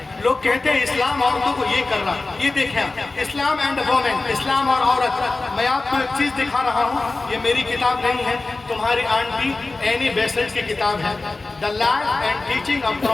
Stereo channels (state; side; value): quieter; right; 3.4 dB